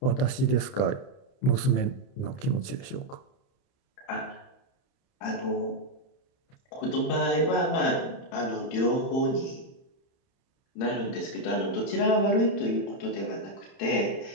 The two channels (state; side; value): late; right; 31 ms